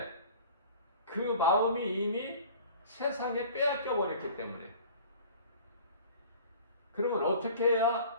그 마음이 이미 세상에 빼앗겨 버렸기 때문에. 그러면 어떻게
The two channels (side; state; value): both; inverted; correlation -0.45